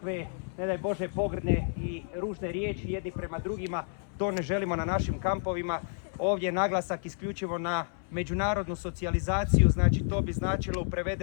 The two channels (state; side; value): silent; right; 58 dB below the other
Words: ne daj Bože, pogrdne i ružne riječi jedni prema drugima. To ne želimo na našim kampovima. Ovdje je naglasak isključivo na međunarodnu socijalizaciju, znači to bi značilo u